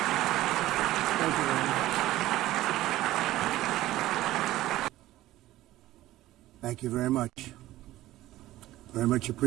Thank you very much. Very much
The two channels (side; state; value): left; quieter; 15.7 dB